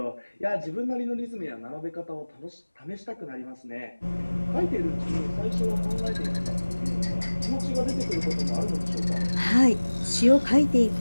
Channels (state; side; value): inverted; both; correlation -1.00